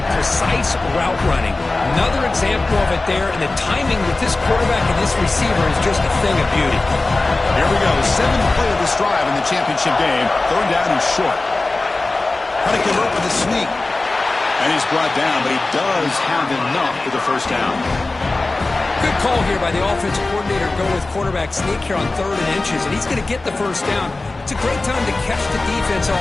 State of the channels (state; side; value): quieter; right; 3.2 dB